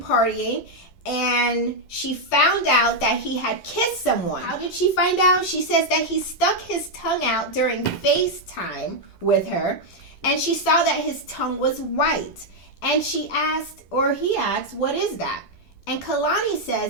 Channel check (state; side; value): late; right; 10 ms